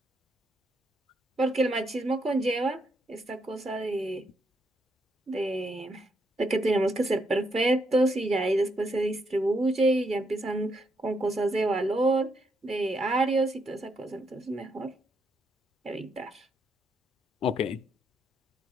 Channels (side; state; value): both; normal; correlation 0.77